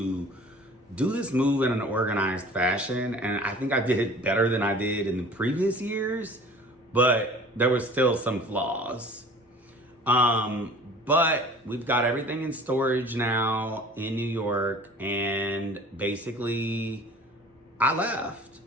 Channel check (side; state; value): both; normal; correlation 0.45